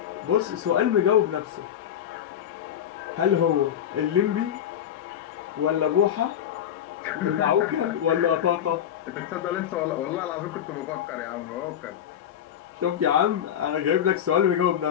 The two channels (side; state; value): right; quieter; 9.8 dB